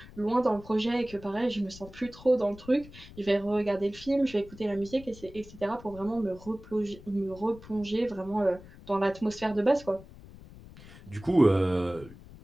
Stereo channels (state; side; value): noise; left; rumble, 19 dB below the sound